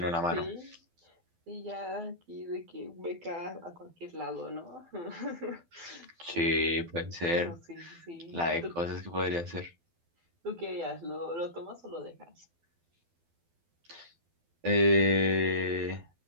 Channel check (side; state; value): left; late; 12 ms